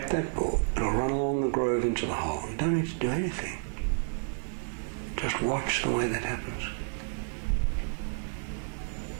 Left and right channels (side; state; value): left; silent; digital silence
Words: that ball, and it'll run along the groove into the hole. You don't need to do anything. Just watch the way that happens.